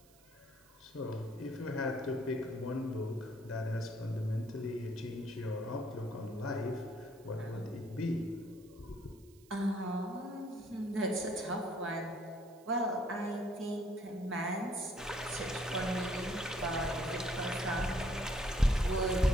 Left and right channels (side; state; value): right; noise; hiss, 27 dB below the sound